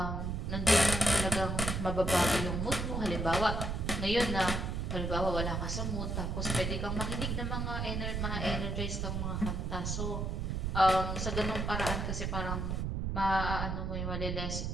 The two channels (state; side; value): noise; right; rumble, 1 dB below the sound